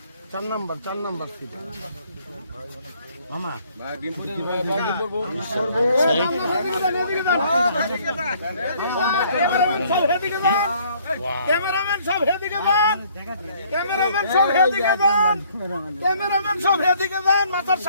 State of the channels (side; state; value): both; inverted; correlation -0.62